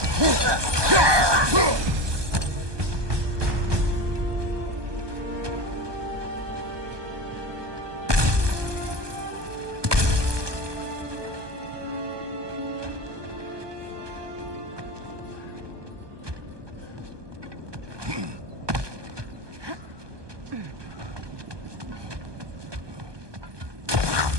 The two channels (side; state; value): left; late; 1.2 ms